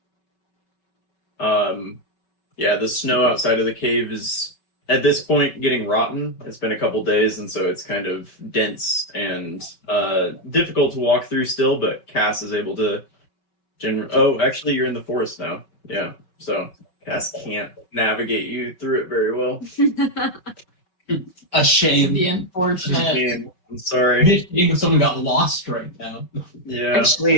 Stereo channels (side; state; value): right; late; 5.2 ms